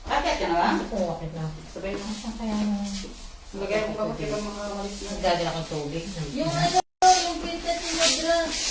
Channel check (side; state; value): both; identical; correlation 1.00